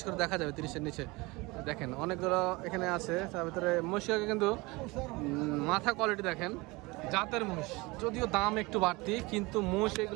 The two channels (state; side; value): quieter; left; 23.8 dB